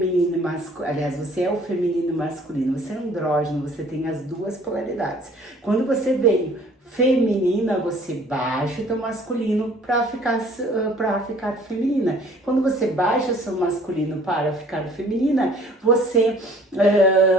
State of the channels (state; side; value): normal; both; correlation 0.54